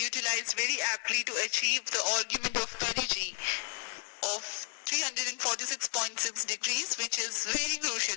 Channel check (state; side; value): silent; right; 56 dB below the other